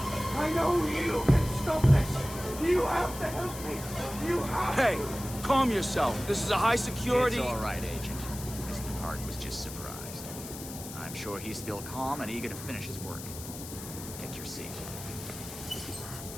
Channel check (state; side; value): noise; left; hiss, 11 dB below the sound